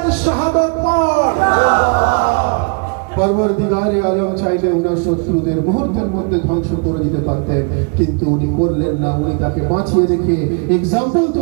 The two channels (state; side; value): quieter; left; 34.9 dB